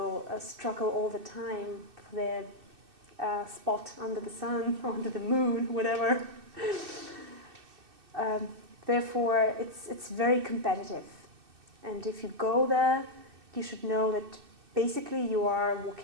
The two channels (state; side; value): late; left; 2.6 ms